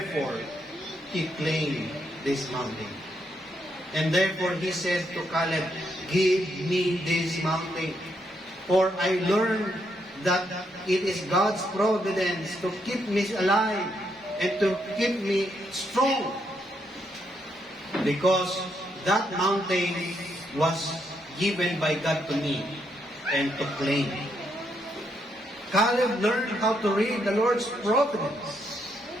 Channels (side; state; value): both; normal; correlation 0.77